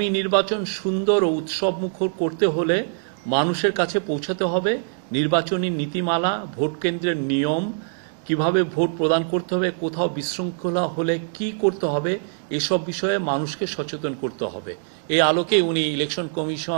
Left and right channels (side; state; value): left; silent; digital silence